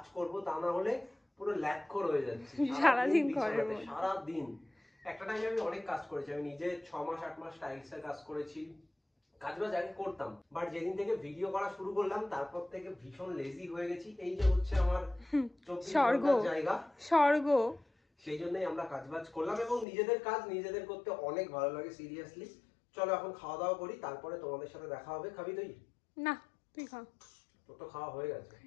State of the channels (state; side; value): drops out; right; at 19.9 s